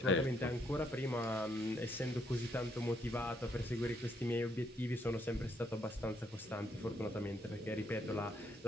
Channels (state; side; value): normal; both; correlation 0.73